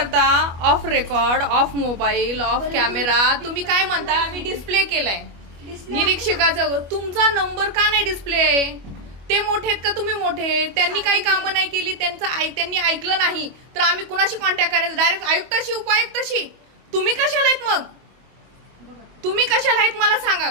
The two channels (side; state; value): left; late; 25 ms